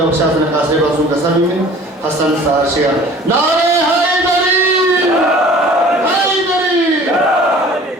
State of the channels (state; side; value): normal; both; correlation 0.47